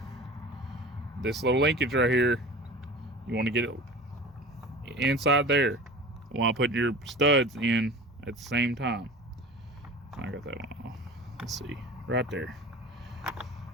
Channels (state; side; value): normal; both; correlation 0.37